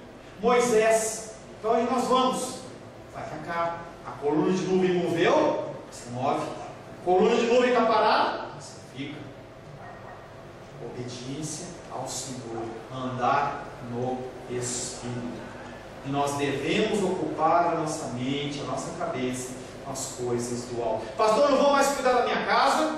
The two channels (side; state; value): both; identical; correlation 1.00